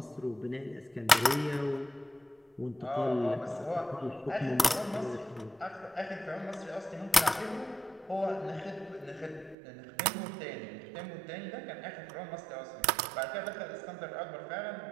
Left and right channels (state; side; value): drops out; left; at 9.6 s